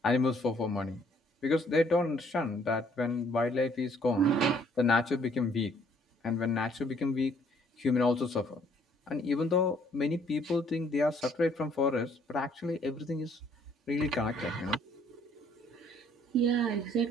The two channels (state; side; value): normal; both; correlation 0.63